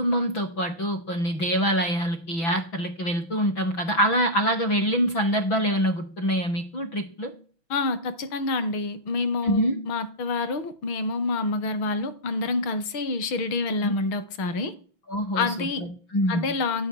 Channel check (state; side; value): late; right; 6.1 ms